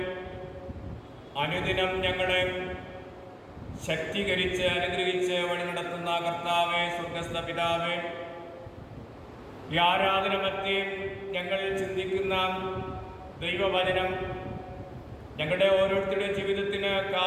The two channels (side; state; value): both; identical; correlation 1.00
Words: അനുദിനം ഞങ്ങളെ ശക്തീകരിച്ച് അനുഗ്രഹിച്ച് വഴി നടത്തുന്ന കർത്താവേ, സ്വർഗ്ഗസ്ഥ പിതാവേ, ഈ ആരാധന മധ്യേ ഞങ്ങൾ ചിന്തിക്കുന്ന ദൈവവചനം ഞങ്ങളുടെ ഓരോരുത്തരുടെ ജീവിതത്തിന്